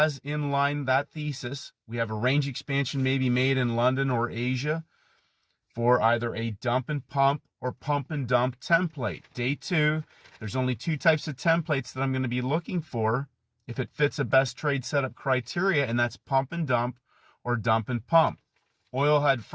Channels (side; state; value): both; identical; correlation 1.00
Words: in line that thesis. We have a range expansion maybe made in London or Asia for either a dump and pump or pump and dump template. Day 2, there's only 2 types of templates that I'm going to be looking for if it fits a best trade setup criteria, and that's pump and dump or dump and pump. Oil had